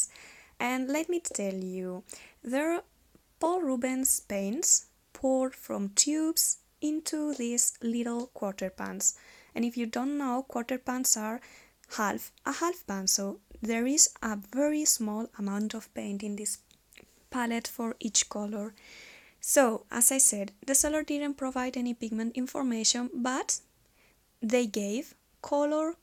And let me tell you, they're Paul Rubens paints poured from tubes into these little quarter pans. And if you don't know, quarter pans are a half pan, so there is a very small amount of paint in this palette for each color. So, as I said, the seller didn't provide any pigment information, but they gave color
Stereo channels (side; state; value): both; identical; correlation 1.00